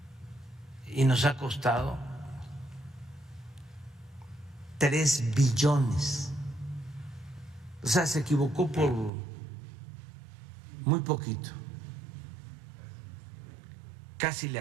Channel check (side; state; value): left; drops out; at 9.1 s